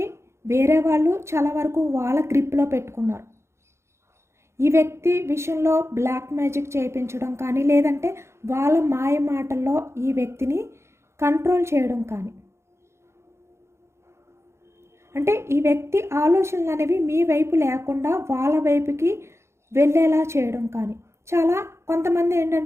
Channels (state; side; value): late; left; 0.13 ms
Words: వేరే వాళ్ళు చాలా వరకు వాళ్ళ గ్రిప్లో పెట్టుకున్నారు. ఈ వ్యక్తి విషయంలో బ్లాక్ మ్యాజిక్ చేయించడం కానీ, లేదంటే వాళ్ళ మాయ మాటల్లో ఈ వ్యక్తిని కంట్రోల్ చేయడం కానీ, అంటే ఈ వ్యక్తి ఆలోచనలు అనేవి మీ వైపు లేకుండా వాళ్ళ వైపుకి వెళ్ళేలా చేయడం కానీ, చాలా కొంతమంది